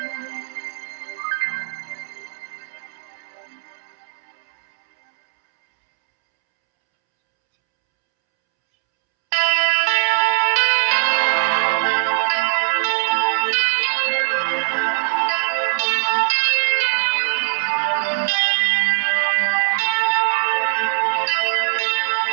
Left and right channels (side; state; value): left; silent; 66 dB below the other